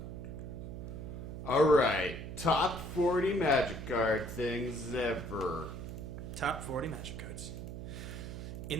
All right. Top 40 Magic card things ever. Top 40 Magic cards.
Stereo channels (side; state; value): right; noise; hum, 8 dB below the sound